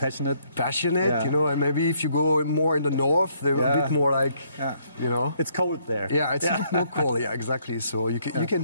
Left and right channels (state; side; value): inverted; both; correlation -0.68